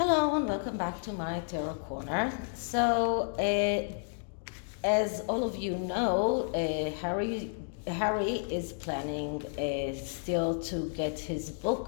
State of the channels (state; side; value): silent; right; digital silence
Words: Hello and welcome back to my Tarot Corner. So, as all of you know, Harry is planning still to get his